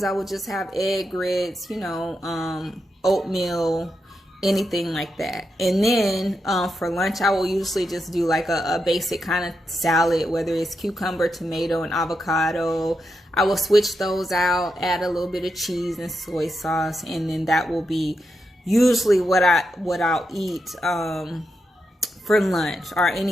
I will just have egg grits, you know, oatmeal, anything like that. And then for lunch, I will usually just do like a basic kind of salad, whether it's cucumber, tomato, and avocado. I will switch those out, add a little bit of cheese and soy sauce, and then that will be usually what I'll eat for lunch, or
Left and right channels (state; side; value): normal; both; correlation 0.85